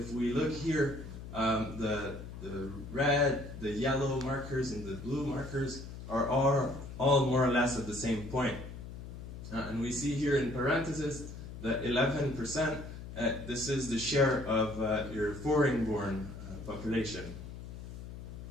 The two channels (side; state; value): left; noise; hum, 11 dB below the sound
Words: we look here, the red, the yellow markers, and the blue markers are all more or less at the same point. And we see here in parentheses the 11%, this is the share of your foreign-born population.